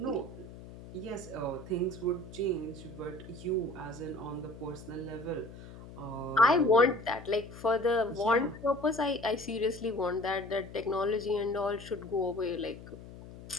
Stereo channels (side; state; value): left; noise; hum, 15 dB below the sound